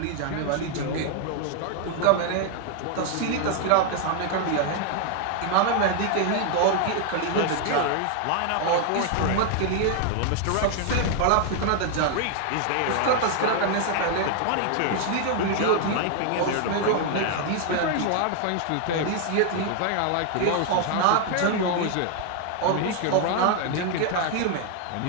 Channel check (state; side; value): different; both; correlation 0.00